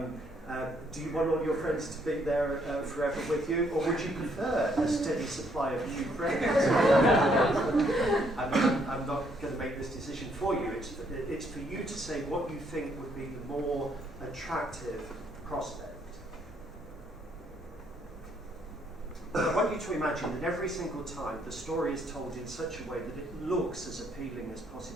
Do you want all your friends to be there forever with you, or would you prefer a steady supply of new friends? I'm not going to make this decision for you. It's for you to say what you think would be the more attractive prospect. I want you to imagine that every single time the story is told in such a way that it looks as appealing as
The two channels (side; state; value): both; normal; correlation 0.69